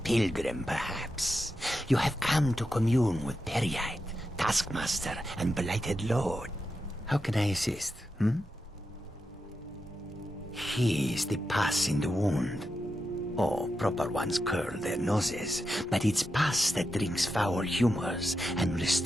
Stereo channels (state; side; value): normal; both; correlation 0.88